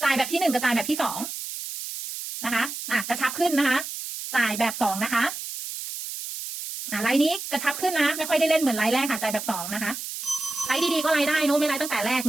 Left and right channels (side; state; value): right; noise; hiss, 8 dB below the sound